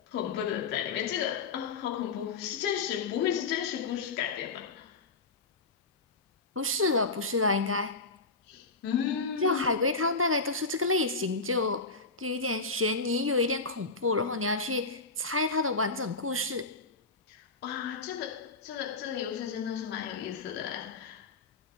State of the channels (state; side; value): quieter; right; 3.9 dB